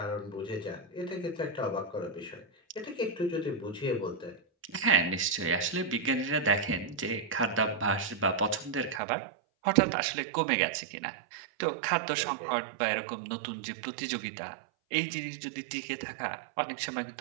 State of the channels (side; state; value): left; drops out; at 9.0 s